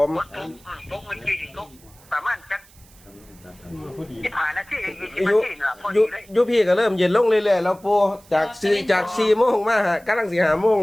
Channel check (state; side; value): noise; right; hiss, 26 dB below the sound